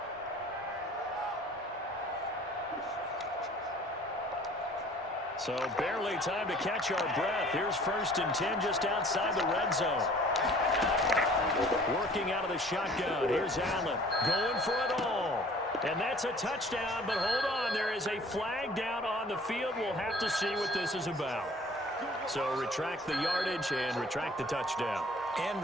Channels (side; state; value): both; normal; correlation 0.51